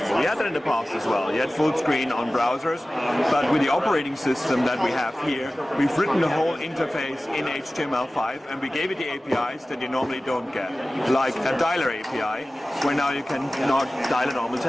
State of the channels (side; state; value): both; normal; correlation 0.96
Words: You had that in the past as well. You had full screen on browsers, but with the operating system that we have here, we've written the whole interface in HTML5 and we gave it the APIs that you normally don't get, like a dialer API, where now you can not dial a normal